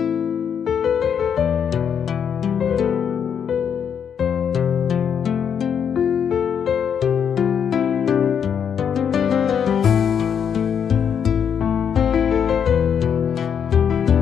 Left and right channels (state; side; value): quieter; right; 7.8 dB